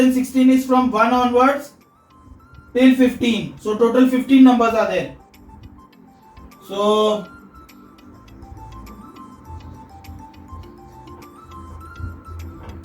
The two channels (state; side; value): identical; both; correlation 1.00